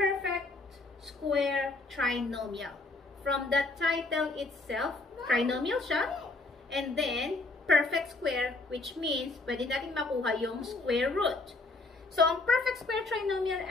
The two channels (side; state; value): right; quieter; 3.3 dB